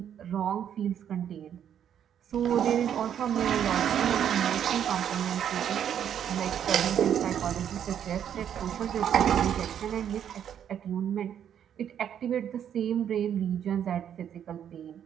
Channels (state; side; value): quieter; left; 9.3 dB